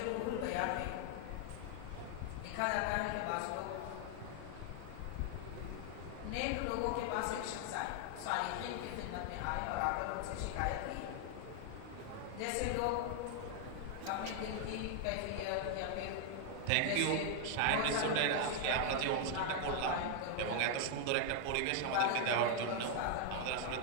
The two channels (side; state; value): both; different; correlation 0.00